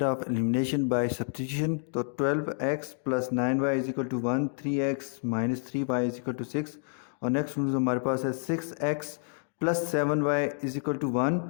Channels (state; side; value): silent; right; 59 dB below the other